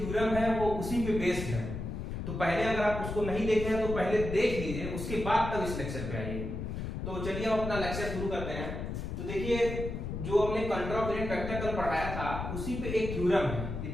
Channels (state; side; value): noise; left; rumble, 5 dB below the sound